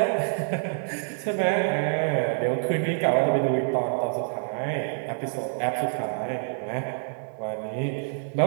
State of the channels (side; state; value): left; silent; digital silence